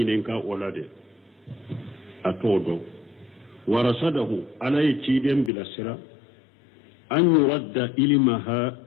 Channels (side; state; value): right; drops out; at 5.5 s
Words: ولده أتودو ورسده على يتيدين بلا سرا أن يرد علمها